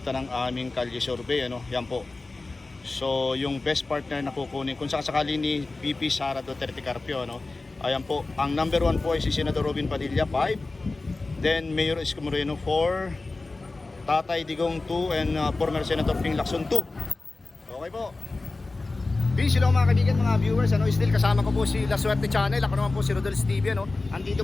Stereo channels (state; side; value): quieter; right; 3.4 dB